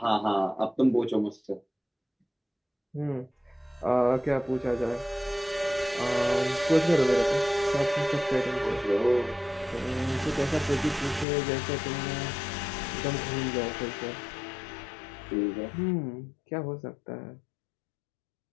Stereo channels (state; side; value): drops out; right; at 11.2 s